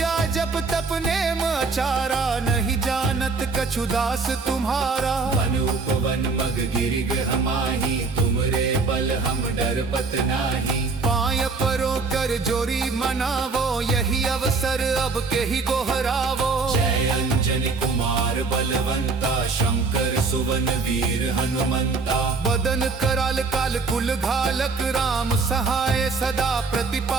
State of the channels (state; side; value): quieter; left; 4.1 dB